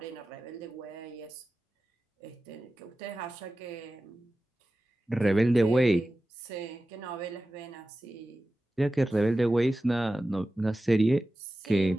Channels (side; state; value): both; normal; correlation 0.94